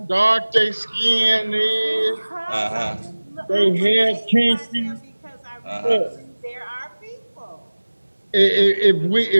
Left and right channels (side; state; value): both; inverted; correlation -1.00